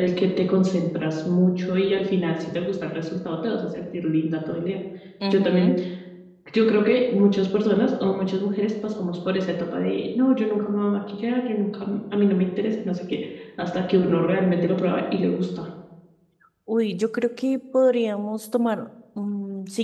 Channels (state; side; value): identical; both; correlation 1.00